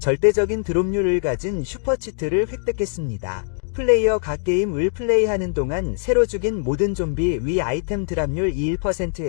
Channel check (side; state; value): right; silent; digital silence